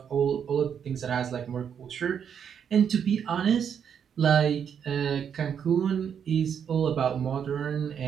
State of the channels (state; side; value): quieter; left; 7.9 dB